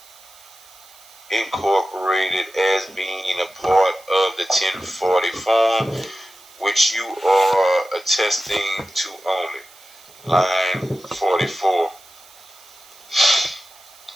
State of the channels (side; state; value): right; noise; hiss, 23 dB below the sound